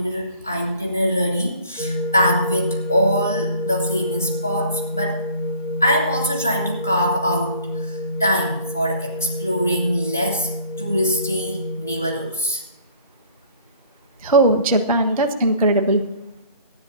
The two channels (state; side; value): inverted; both; correlation -0.53